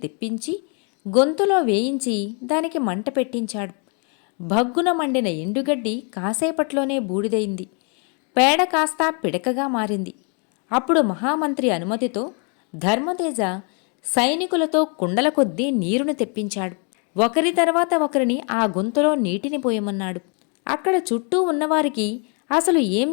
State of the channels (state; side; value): quieter; right; 37.5 dB